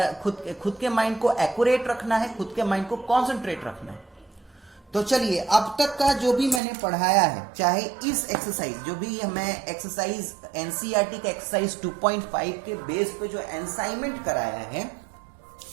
खुद के माइंड को एक्यूरेट रखना है, खुद के माइंड को कॉन्सेंट्रेट रखना है। तो चलिए, अब तक का जो भी मैंने पढ़ाया है, चाहे इस एक्सरसाइज जो भी मैं एक्सरसाइज एनसीईआरटी का एक्सरसाइज 2.5 के बेस पे जो असाइनमेंट कराया है,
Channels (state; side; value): drops out; left; at 6.6 s